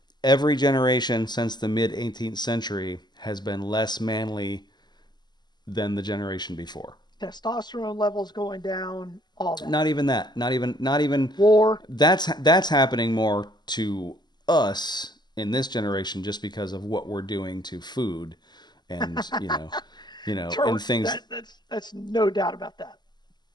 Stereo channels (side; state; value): right; late; 0.21 ms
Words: every generation since the mid 18th century has been less manly than the generation before. Testosterone levels going down, all that. Not even that. Not even War. that's happening more to us in this generation just because of what we're doing to food and and things. That's no doubt about that.